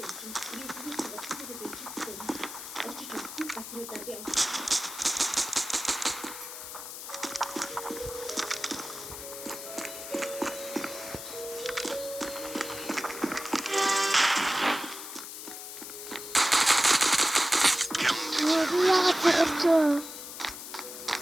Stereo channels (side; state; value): left; noise; hiss, 10 dB below the sound